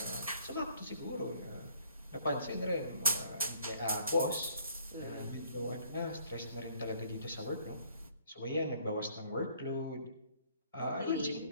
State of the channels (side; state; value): both; inverted; correlation -0.61